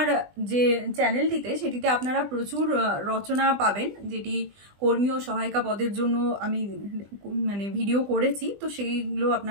যে চ্যানেলটিতে সেটিতে আপনারা প্রচুর রচনা পাবেন, যেটি কর্মী ও সহায়িকা পদের জন্য আমি ভিডিও করেছি, তো সেইগুলো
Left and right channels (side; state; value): left; late; 20 ms